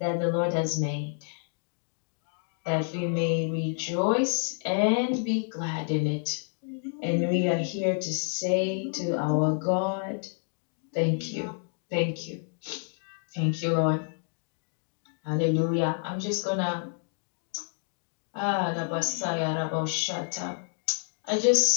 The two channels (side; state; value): right; silent; 59 dB below the other